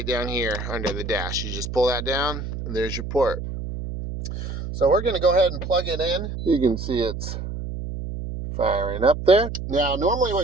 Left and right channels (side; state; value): right; noise; hum, 6 dB below the sound